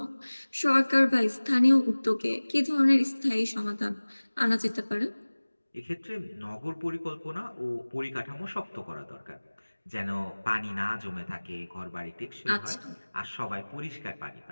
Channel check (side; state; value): both; inverted; correlation -1.00